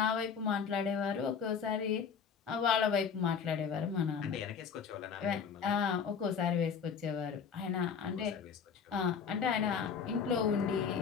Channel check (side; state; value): right; quieter; 6.6 dB